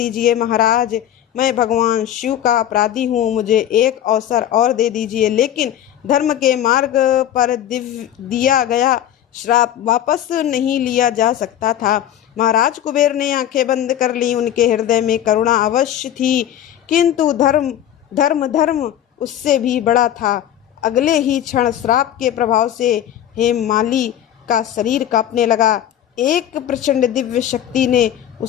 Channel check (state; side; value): quieter; right; 11.0 dB